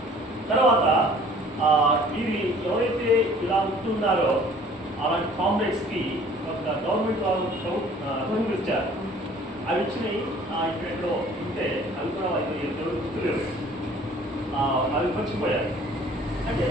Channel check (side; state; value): both; normal; correlation 0.52